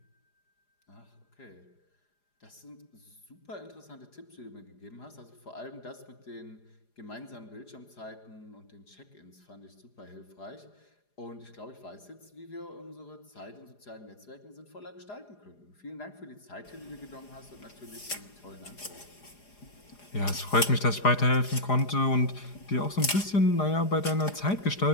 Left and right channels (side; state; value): right; late; 4.9 ms